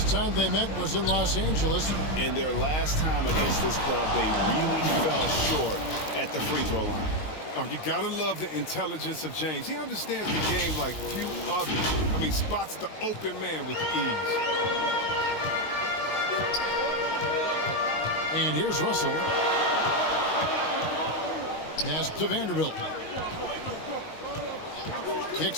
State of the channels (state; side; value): late; right; 19 ms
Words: time they met was in Los Angeles. In their last time against this club, they really fell short at the free throw line. Oh, you gotta love the intelligence of James. He understands the game like few others. I mean, spots the open man with ease. And here's Russell. Pass to Vanderbilt.